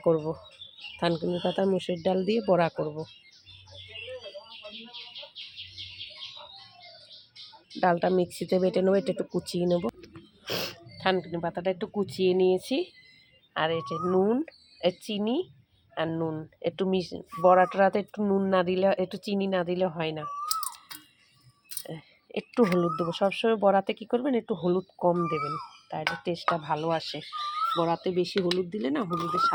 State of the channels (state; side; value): identical; both; correlation 1.00